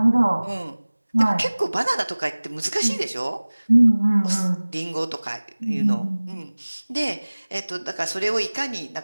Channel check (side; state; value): both; inverted; correlation -1.00